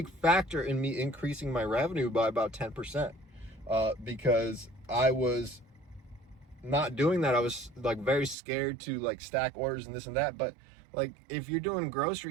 factor in me increasing my revenue by about 10%, because I was not doing that. I was like very scared to like stack orders and this and that. But like if you're doing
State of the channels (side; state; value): left; drops out; at 8.3 s